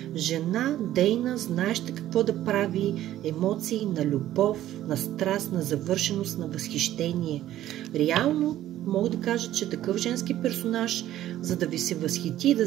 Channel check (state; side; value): quieter; left; 13.2 dB